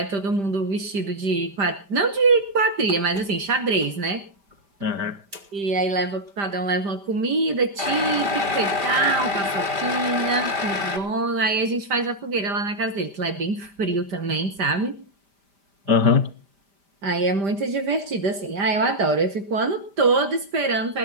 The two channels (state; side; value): late; left; 5.1 ms